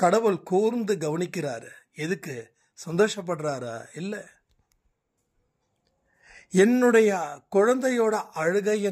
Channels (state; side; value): identical; both; correlation 1.00